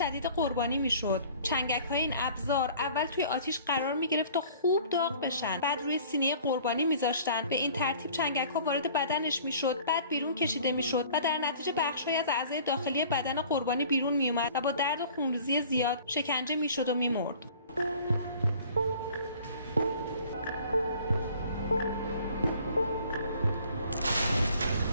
قربانی می‌شد. چنگک‌های این ابزار اول توی آتیش قرار می‌گرفت تا خوب داغ بشن، بعد روی سینه قربانی می‌ذاشتن. به این ترتیب چنگک‌ها وارد بدنش می‌شد، بعد بیرون کشیده می‌شد و در نتیجه بخش‌هایی از اعضای داخلی بدن قربانی بیرون می‌اومد و با درد و خونریزی زیاد شکنجه می‌شد و می‌مرد.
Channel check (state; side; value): inverted; both; correlation -0.50